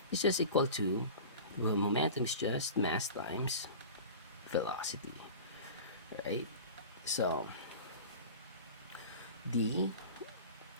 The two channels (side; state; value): both; inverted; correlation -0.35